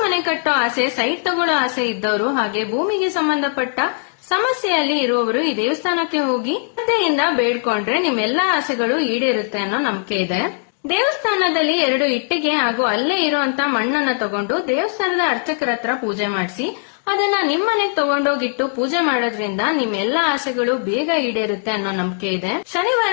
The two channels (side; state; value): right; silent; digital silence